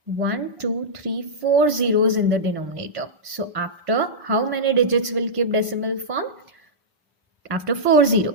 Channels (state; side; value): normal; both; correlation -0.12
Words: 1 2 3 4 zeros in the denominator, so after how many digits will keep decimal form? After 4